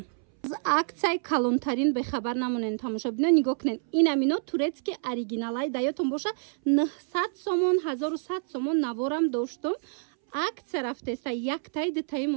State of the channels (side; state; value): left; silent; 60 dB below the other